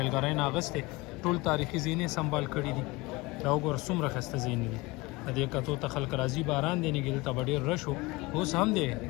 نه اخیستی ټول تاریخي ځایونه یې سنبال کړي دي. دا وګوره څومره ښایسته ځایونه دي د دې کتو ته خلک راځي. باران دی نګي دلته به ډېر رش و اوس هم دی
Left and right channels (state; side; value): quieter; right; 22.3 dB